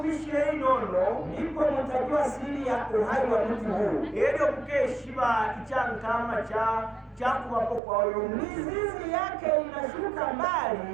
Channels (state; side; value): drops out; left; at 7.8 s